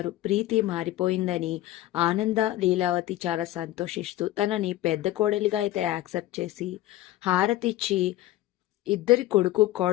ప్రీతి మారిపోయిందని ఆనంద లీలావతి చాలా సంతోషిస్తూ తనని పెద్ద కోడలిగా అయితే యాక్సెప్ట్ చేసి హారతిచ్చి ఇద్దరి కొడుకు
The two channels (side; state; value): right; quieter; 15.2 dB